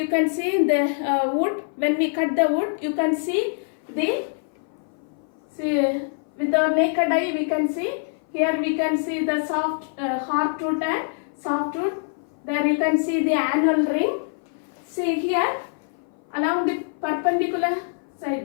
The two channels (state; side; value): silent; right; 58 dB below the other